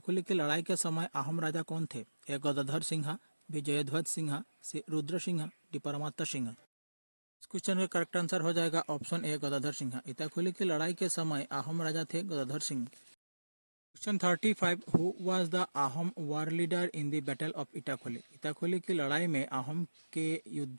की लड़ाई के समय अहोम राजा कौन थे? A Gadadhar Singh, B Jayadhwaj Singh, C Rudra Singh, D Paramatta Singh. इस क्वेश्चन का करेक्ट आंसर हो जाएगा ऑप्शन ए गदाधर सिंह। इटाखोली की लड़ाई के समय अहोम राजा थे Gadadhar Singh. Question 35, who was the Ahom war leader in the battle of Itakhuli? Itakhuli की लड़ाई में अहोम के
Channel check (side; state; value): both; inverted; correlation -1.00